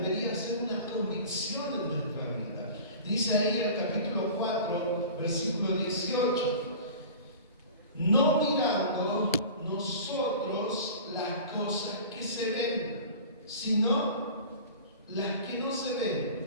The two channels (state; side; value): inverted; both; correlation -0.38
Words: ser una convicción en nuestra vida. Dice ahí el capítulo 4, versículo 18. No mirando nosotros las cosas que se ven, sino las que no se